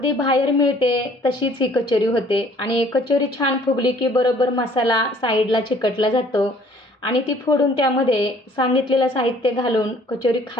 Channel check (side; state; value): both; normal; correlation 0.57